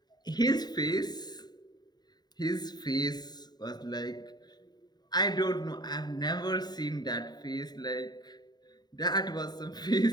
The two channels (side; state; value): right; late; 0.20 ms